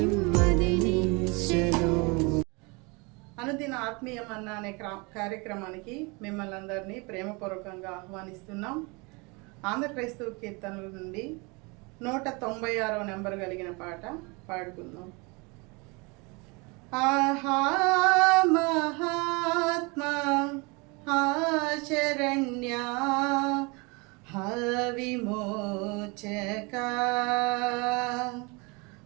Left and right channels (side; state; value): left; quieter; 28.4 dB